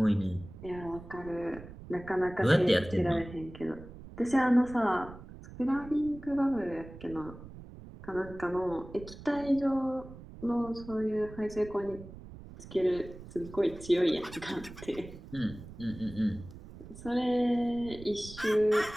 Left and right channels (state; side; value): noise; right; rumble, 15 dB below the sound